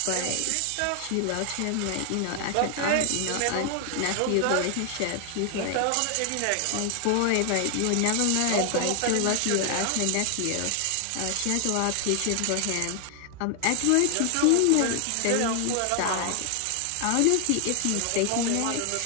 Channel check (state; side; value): different; both; correlation 0.00